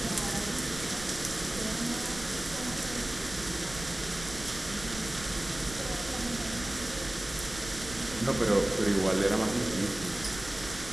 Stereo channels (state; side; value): noise; right; rumble, 13 dB below the sound